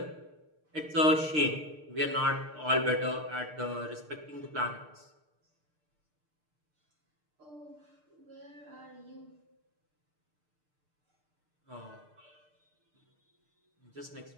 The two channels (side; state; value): left; late; 6.6 ms